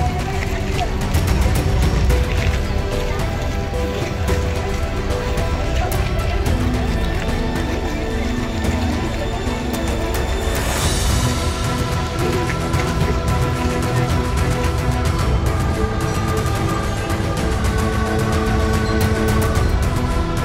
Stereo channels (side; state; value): both; identical; correlation 1.00